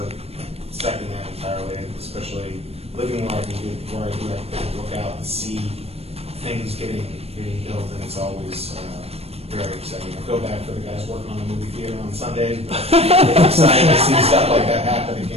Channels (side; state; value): left; late; 0.29 ms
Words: second that entirely, especially living where I do, I can look out and see things getting built, and it's always very exciting. I feel bad for the guys working on the movie theater on Sundays, but it's exciting to see stuff like that